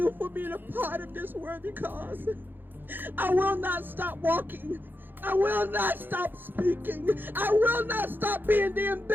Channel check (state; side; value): late; left; 0.095 ms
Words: for being a part of this worthy cause. I will not stop walking. I will not stop speaking. I will not stop being the